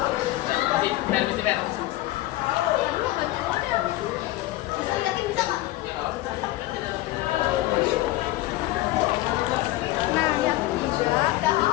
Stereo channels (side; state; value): right; quieter; 17.3 dB